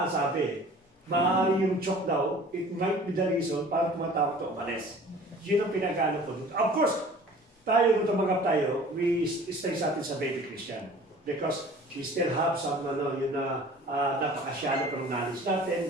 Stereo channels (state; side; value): normal; both; correlation 0.46